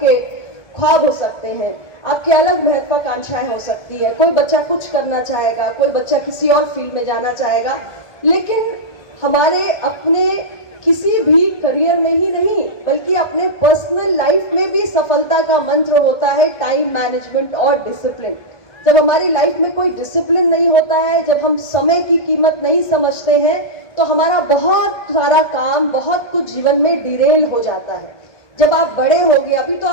ख्वाब हो सकते हैं, आपकी अलग महत्वाकांक्षाएं हो सकती है। कोई बच्चा कुछ करना चाहेगा, कोई बच्चा किसी और फील्ड में जाना चाहेगा, लेकिन हमारे अपने किसी भी करियर में ही नहीं बल्कि अपने पर्सनल लाइफ में भी सफलता का मंत्र होता है टाइम मैनेजमेंट और डिसिप्लिन। जब हमारी लाइफ में कोई डिसिप्लिन नहीं होता है, जब हम समय की कीमत नहीं समझते हैं, तो हमारा बहुत सारा काम, बहुत कुछ जीवन में डिरेल हो जाता है। जब आप बड़े होगे, अभी तो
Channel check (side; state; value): right; late; 1.6 ms